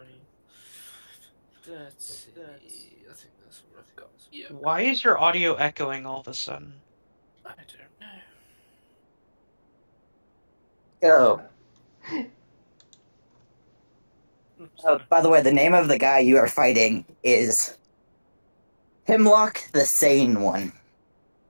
Let's see. I think that's what I've got. Yeah. Why is your audio echoing all of a sudden? I don't know. Oh, Sorry. by the way, the name of the guy you are fighting is Hemlock the Sane One.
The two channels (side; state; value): both; inverted; correlation -1.00